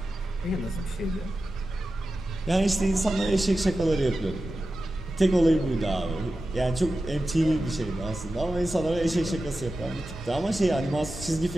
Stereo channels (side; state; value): both; normal; correlation 0.93